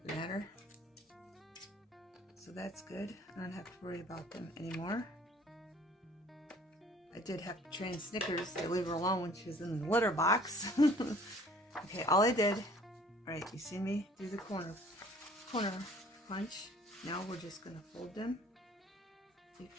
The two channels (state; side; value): normal; both; correlation 0.53